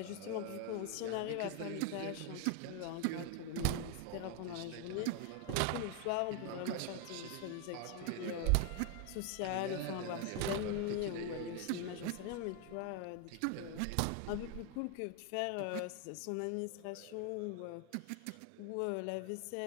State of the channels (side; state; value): both; different; correlation 0.00